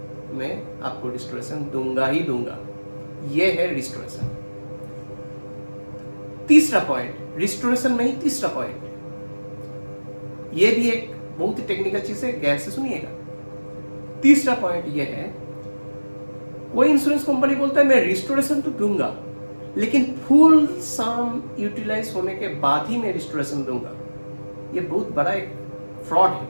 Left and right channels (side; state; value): both; inverted; correlation -1.00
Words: मैं आपको रिस्टोरेशन दूंगा ही दूंगा। यह है रिस्टोरेशन। तीसरा पॉइंट, रिस्टोरेशन में ही तीसरा पॉइंट, यह भी एक बहुत ही टेक्निकल चीज है, गैर से सुनिएगा। तीसरा पॉइंट यह है, कोई इंश्योरेंस कंपनी बोलता है मैं रिस्टोरेशन तो दूंगा लेकिन फुल सम यूटिलाइज होने के बाद ही मैं रिस्टोरेशन दूंगा। यह बहुत बड़ा एक फ्रॉड है।